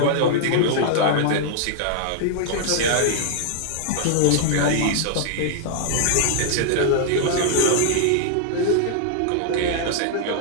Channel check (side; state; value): both; different; correlation -0.01